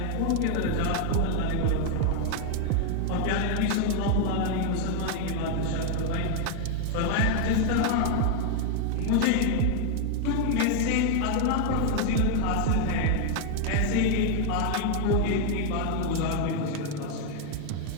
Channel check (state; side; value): different; both; correlation 0.01